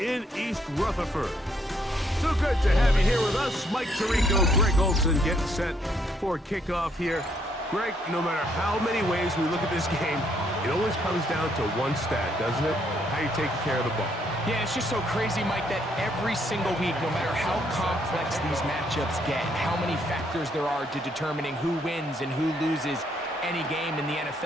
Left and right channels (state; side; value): normal; both; correlation 0.71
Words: in East Rutherford. So good to have you here with us. Mike Tirico, Greg Olson getting set for kickoff here. Greg, no matter how many ways we look at this game, it always comes down to one stat, doesn't it? How you taking care of the ball. Yeah, it's just so crazy, Mike, that every single week, no matter how complex these matchups get, how many factors there are to determining who wins and who loses any game in the